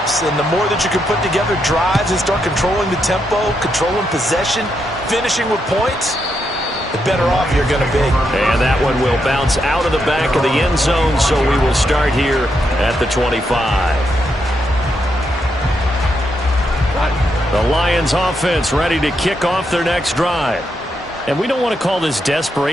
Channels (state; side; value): normal; both; correlation 0.81